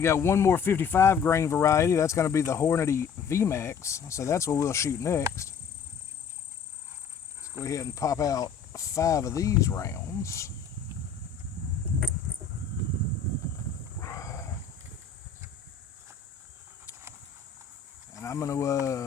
got one more 55 grain variety. That's going to be the Hornady VMAX. So that's what we'll shoot next. Let's go ahead and pop out 5 of these rounds. And I'm going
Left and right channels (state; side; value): quieter; right; 6.4 dB